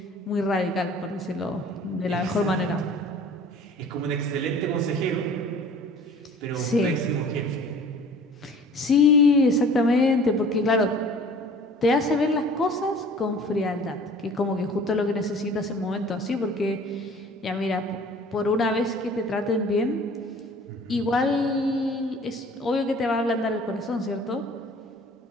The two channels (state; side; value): normal; both; correlation 0.48